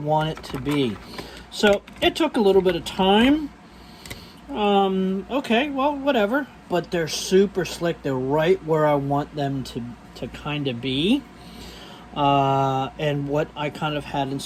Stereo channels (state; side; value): identical; both; correlation 1.00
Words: it to be. So it took a little bit of time. Okay, well, whatever. But they're super slick. They're right where I want them to kind of be. And what I kind of had